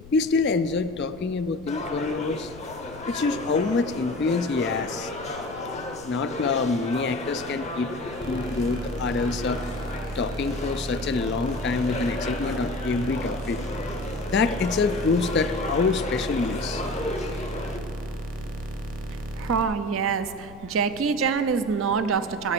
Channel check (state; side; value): noise; left; rumble, 19 dB below the sound